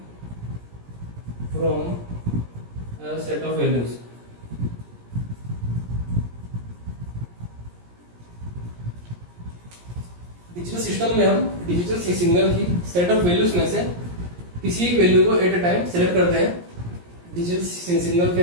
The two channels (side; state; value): left; late; 17 ms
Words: from a set of values. Digital system में हम डिजिटल सिग्नल की सेट ऑफ वैल्यूज में से किसी एक वैल्यू को एट अ टाइम सेलेक्ट करते हैं डिजिटल सिग्नल